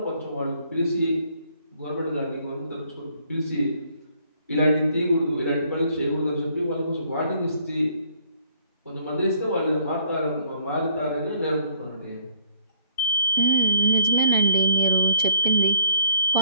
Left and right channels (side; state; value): both; inverted; correlation -0.64